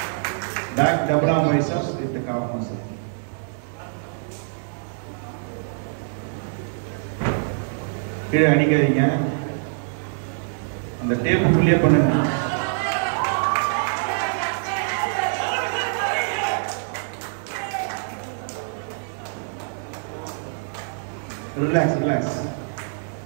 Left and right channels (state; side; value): silent; left; digital silence